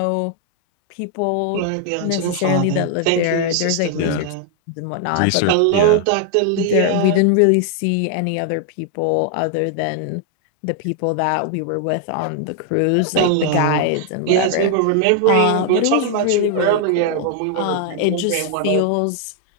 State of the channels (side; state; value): both; different; correlation 0.00